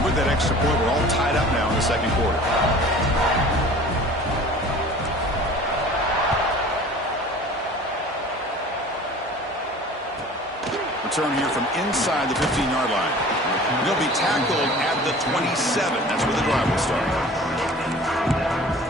with that extra point, we're all tied up now in the second quarter. Return here from inside the 15-yard line. He'll be tackled at the 27. That's where the drive will start.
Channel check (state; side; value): normal; both; correlation 0.44